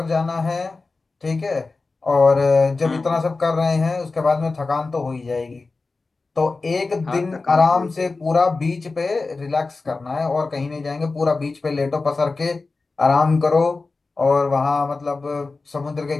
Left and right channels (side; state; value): right; quieter; 3.8 dB